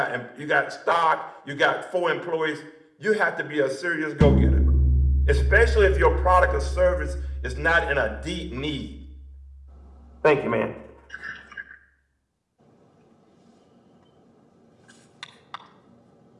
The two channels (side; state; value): both; identical; correlation 1.00